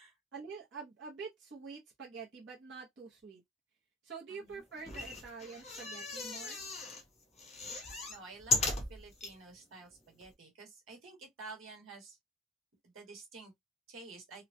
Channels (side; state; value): both; normal; correlation 0.43